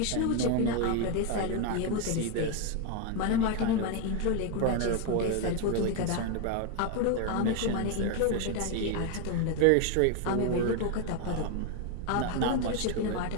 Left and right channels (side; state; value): both; different; correlation 0.01